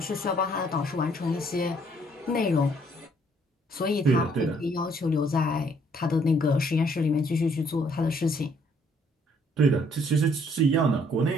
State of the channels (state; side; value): normal; both; correlation 0.65